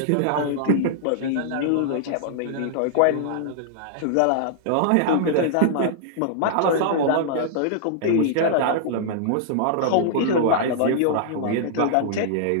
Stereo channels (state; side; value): different; both; correlation -0.01